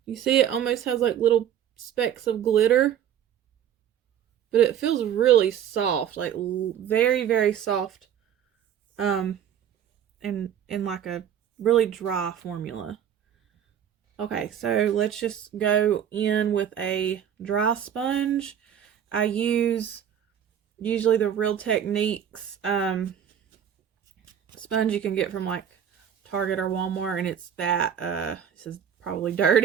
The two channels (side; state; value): left; quieter; 9.3 dB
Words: You see it almost has like little specks of glitter. But it feels really soft. Like very, very soft. And like a really dry formula. Okay, so let's just go in with a dry sponge. I use usually the Real Techniques sponge you can get from like Target or Walmart, and it's that this is probably